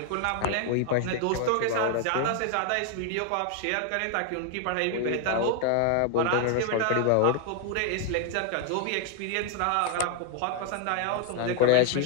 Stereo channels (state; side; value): different; both; correlation 0.00